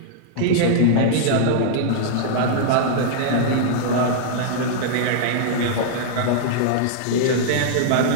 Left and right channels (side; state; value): both; different; correlation -0.01